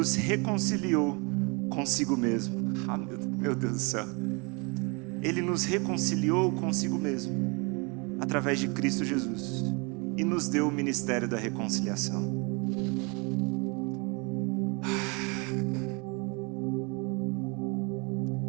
reconciliou consigo mesmo. Ah, meu Deus do céu. Ele nos reconciliou consigo mesmo, através de Cristo Jesus, e nos deu o ministério da reconciliação.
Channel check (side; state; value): left; quieter; 30.8 dB